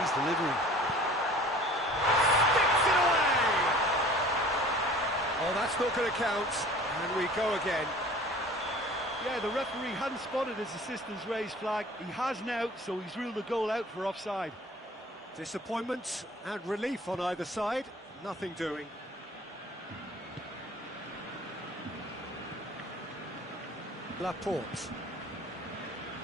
delivering. Sticks it away! Oh, that's not going to count, and we go again. Yeah, the referee hadn't spotted his assistant's raised flag. He has now, so he's ruled the goal out for offside. Disappointment and relief on either side, nothing doing. Laporte.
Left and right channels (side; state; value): both; normal; correlation 0.47